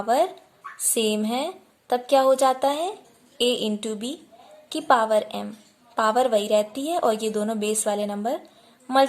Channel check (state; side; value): identical; both; correlation 1.00